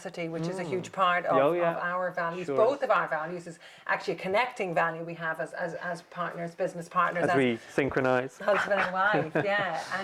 which is a huge part of our values. Sure. Both of our values is actually a connecting value we have as partners, business partners. As we synchronize. Husband and wife, yeah.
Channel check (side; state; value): both; identical; correlation 1.00